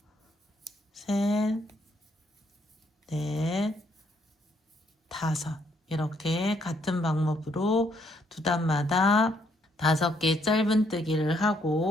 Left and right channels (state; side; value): normal; both; correlation 0.70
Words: 셋, 넷, 5. 이렇게 같은 방법으로 두 단마다 5개 짧은뜨기를